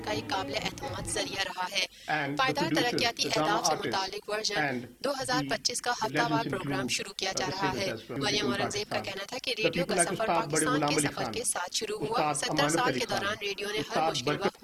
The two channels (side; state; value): both; identical; correlation 1.00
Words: ایک قابل اعتماد ذریعہ رہا ہے۔ پائیدار ترقیاتی اہداف سے متعلق ورژن 2025 کا ہفتہ وار پروگرام شروع کیا جا رہا ہے۔ مریم اورنگزیب کا کہنا تھا کہ ریڈیو کا سفر پاکستان کے سفر کے ساتھ شروع ہوا۔ 70 سال کے دوران ریڈیو نے ہر مشکل وقت